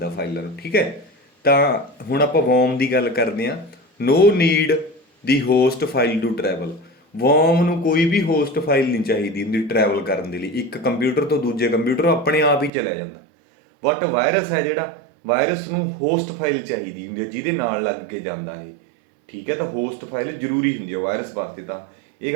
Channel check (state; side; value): drops out; left; at 12.7 s